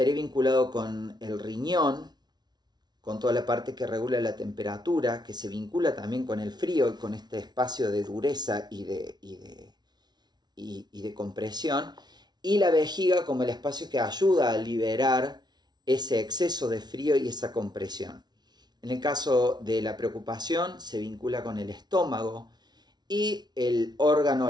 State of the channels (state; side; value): late; left; 0.20 ms